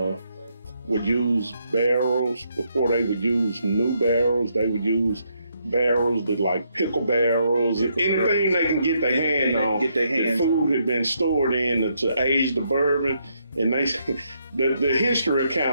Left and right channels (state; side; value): inverted; both; correlation -0.76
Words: would use barrels, before they would use new barrels, they would use barrels that like pickle barrels, anything they can get their hand on. The food had been stored in to age the bourbon, and they the history